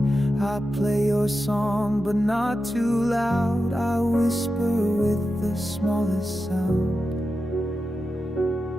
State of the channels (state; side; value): normal; both; correlation 0.90